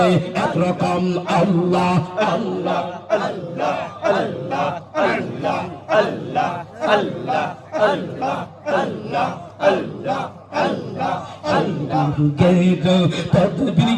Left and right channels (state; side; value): identical; both; correlation 1.00